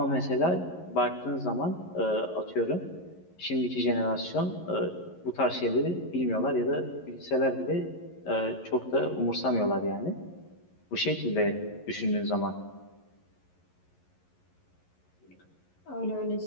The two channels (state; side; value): late; right; 11 ms